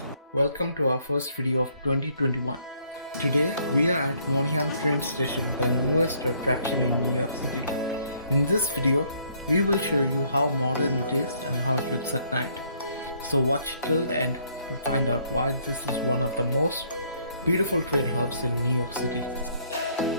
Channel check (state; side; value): inverted; both; correlation -0.66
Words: welcome to our first video of 2021. Today we are at Moynihan train station, the newest attraction in New York City. In this video, we will show you how modern it is and how it looks at night. So watch till the end to find out why this is one of the most beautiful train hubs in New York City.